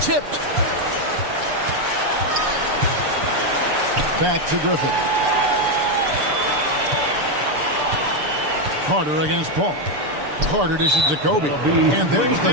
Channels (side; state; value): left; late; 6.8 ms